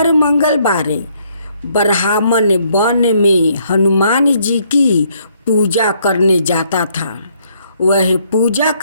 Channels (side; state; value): both; inverted; correlation -0.69